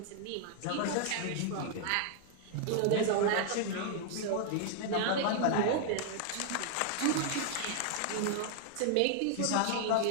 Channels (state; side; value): different; both; correlation -0.01